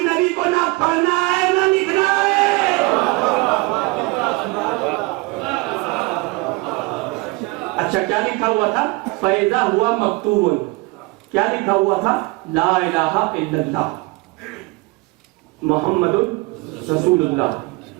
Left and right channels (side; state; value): left; quieter; 24.0 dB